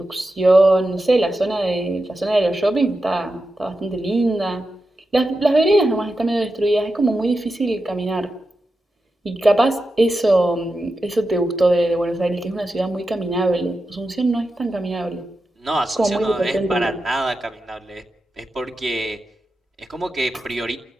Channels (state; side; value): normal; both; correlation 0.90